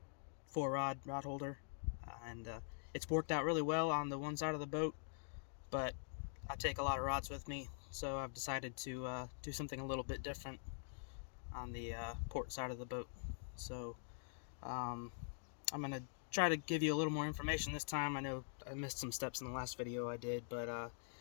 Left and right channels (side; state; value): right; silent; digital silence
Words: 4-rod rod holder, and it's worked out really well on the one side of the boat, but I take a lot of rods with me, so I've decided to do something a little bit different on the port side of the boat. So I'm going to try to give you a little more information this time. I know I missed some steps in the last video I did, but